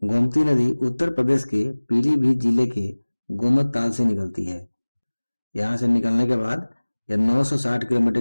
गोमती नदी उत्तर प्रदेश के पीलीभीत जिले के गोमत ताल से निकलती है। यहाँ से निकलने के बाद यह 960 किलोमीटर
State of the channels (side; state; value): both; inverted; correlation -1.00